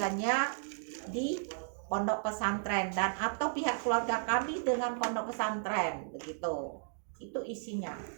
di pondok pesantren dan atau pihak keluarga kami dengan pondok pesantren, begitu. Itu isinya.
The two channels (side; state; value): left; silent; digital silence